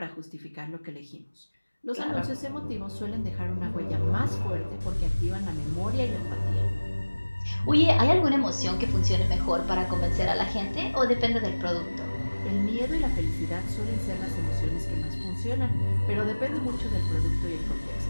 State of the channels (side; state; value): both; inverted; correlation -1.00